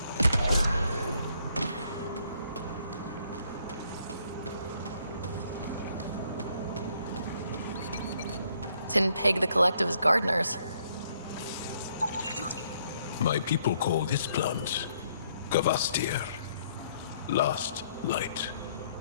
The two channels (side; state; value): both; inverted; correlation -0.69